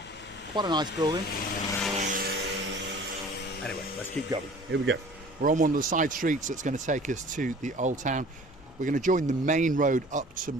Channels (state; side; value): noise; left; hum, 27 dB below the sound